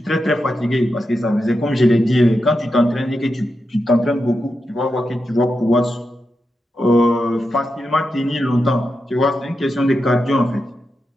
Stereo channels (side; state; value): both; normal; correlation 0.88